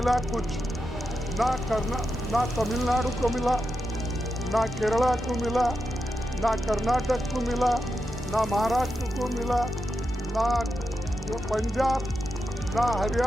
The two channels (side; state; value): both; normal; correlation 0.88